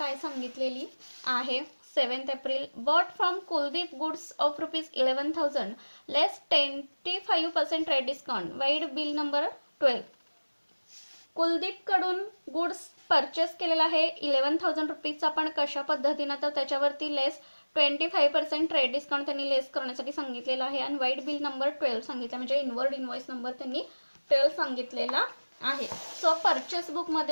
सांगितलेली आहे. 7 April bought from Kuldeep goods of ₹11,000 less 25% trade discount vide bill number 12. कुलदीपकडून गुड्स परचेस केलेला आहे 11,000 रुपीजचा. पण कशा पद्धतीनं तर त्याच्यावरती लेस 25% ट्रेड डिस्काउंट त्यांनी लेस करण्यासाठी सांगितलेला आहे आणि वाईड बिल नंबर 12 सांगितलं म्हणजे इनवर्ड इनव्हॉइस नंबर त्यांनी 12 सांगितलेला आहे. सो परचेस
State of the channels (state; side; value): inverted; both; correlation -1.00